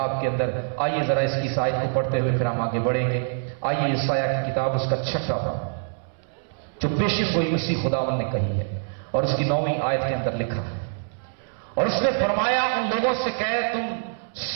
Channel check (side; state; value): left; silent; 62 dB below the other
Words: के अंदर, आइए जरा इसकी इस आयत को पढ़ते हुए फिर हम आगे बढ़ेंगे। आइए यशायाह की किताब उसका 6वां बाब, जो पेशिन गोई मसीह खुदावन ने कही है और उसकी 9वीं आयत के अंदर लिखा है। और उसने फरमाया, उन लोगों से कहे, तुम